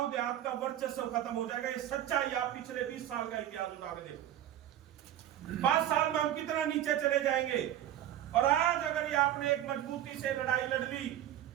देहात का वर्चस्व खत्म हो जाएगा। ये सच्चाई आप पिछले 20 साल का इतिहास उठा के देखो। 5 साल में हम कितना नीचे चले जाएंगे। और आज अगर ये आपने एक मजबूती से लड़ाई लड़ ली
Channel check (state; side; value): quieter; left; 11.9 dB